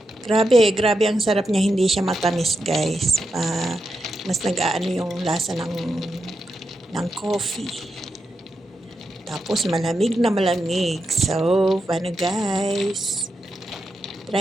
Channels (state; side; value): normal; both; correlation 0.86